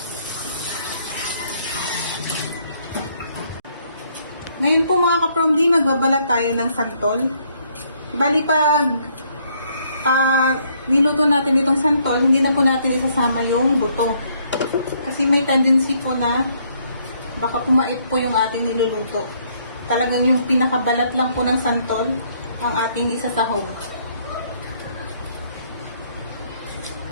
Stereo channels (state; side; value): inverted; both; correlation -0.68